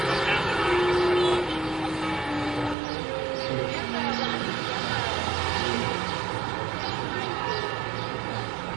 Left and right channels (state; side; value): drops out; left; at 2.8 s